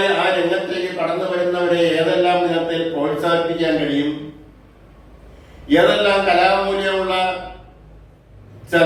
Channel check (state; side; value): identical; both; correlation 1.00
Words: ആ രംഗത്തേക്ക് കടന്നു വരുന്നവരെ ഏതെല്ലാം വിധത്തിൽ പ്രോത്സാഹിപ്പിക്കാൻ കഴിയും, ഏതെല്ലാം കലാമൂല്യമുള്ള